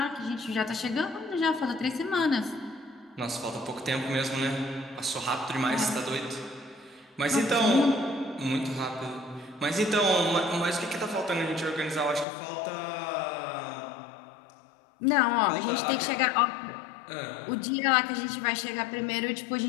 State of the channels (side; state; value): right; drops out; at 12.2 s